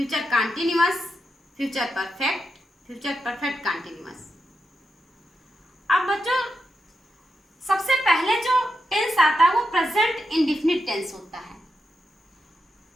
continuous, future perfect, future perfect continuous. अब बच्चों, सबसे पहले जो टेंस आता है वो प्रेजेंट इंडेफिनिट टेंस होता है।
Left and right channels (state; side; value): normal; both; correlation 0.86